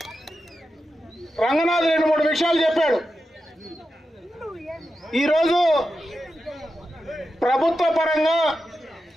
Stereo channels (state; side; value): normal; both; correlation 0.90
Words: రంగనాథ్ 2-3 విషయాలు చెప్పాడు. ఈరోజు ప్రభుత్వ పరంగా